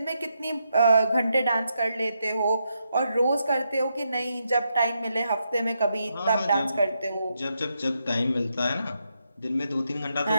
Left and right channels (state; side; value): inverted; both; correlation -0.82